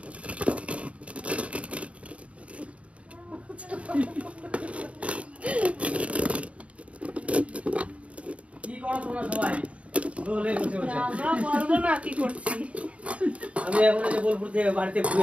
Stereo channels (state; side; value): late; left; 0.064 ms